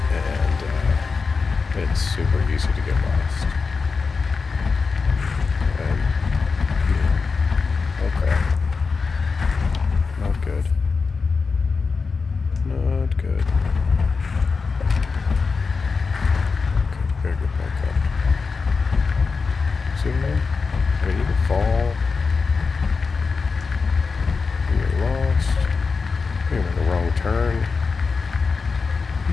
and it's super easy to get lost. And, oh crap. Not good. Not good. Gotta get back up. See what I mean? I mean, you can fall. You get lost. You make a wrong turn.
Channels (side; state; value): right; quieter; 4.7 dB